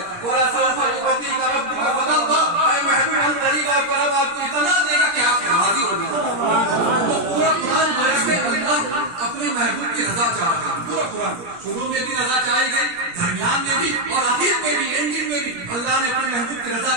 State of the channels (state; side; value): late; left; 17 ms